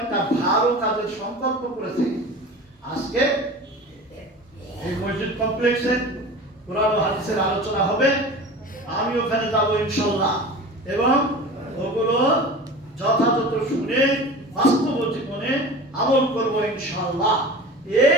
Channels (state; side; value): normal; both; correlation 0.36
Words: ভালো কাজের সংকল্প করেছে। আজকে এই মসজিদ কমপ্লেক্সে কোরআন ও হাদিসের আলোচনা হবে, আমি ওখানে যাবো ইনশাআল্লাহ, এবং ওগুলো যথাযথ শুনে বাস্তব জীবনে আমল করব ইনশাআল্লাহ।